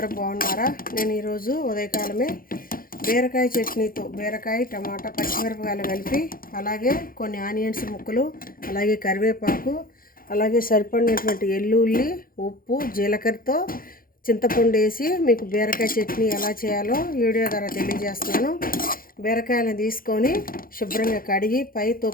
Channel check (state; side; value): late; right; 0.42 ms